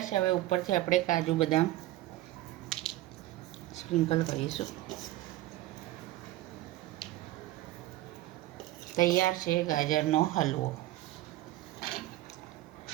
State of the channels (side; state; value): left; quieter; 15.9 dB